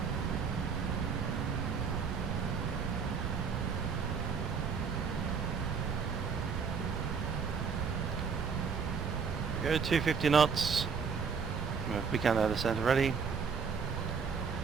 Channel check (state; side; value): quieter; left; 5.9 dB